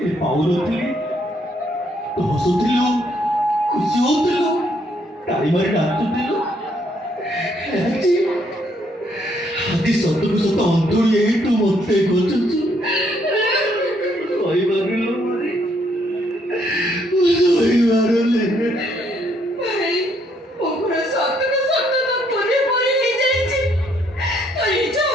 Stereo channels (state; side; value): normal; both; correlation 0.70